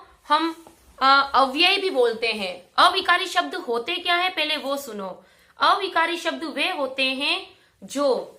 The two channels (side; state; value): both; identical; correlation 1.00